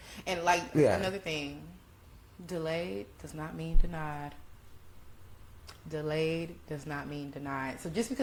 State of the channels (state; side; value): identical; both; correlation 1.00